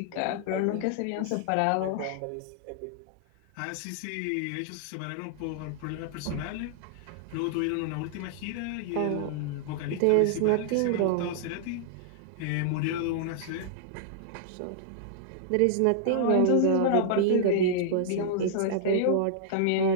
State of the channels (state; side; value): different; both; correlation -0.01